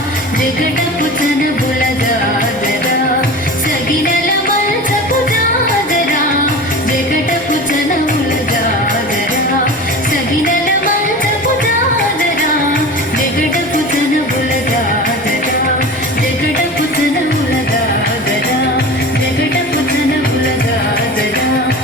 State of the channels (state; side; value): normal; both; correlation 0.33